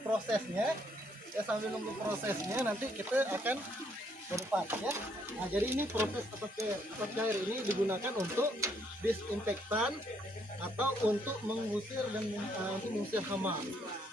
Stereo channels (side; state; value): both; normal; correlation 0.70